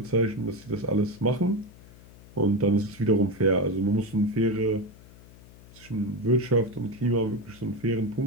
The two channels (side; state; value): left; noise; hum, 22 dB below the sound